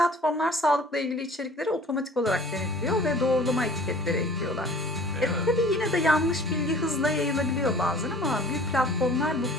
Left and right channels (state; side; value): normal; both; correlation 0.47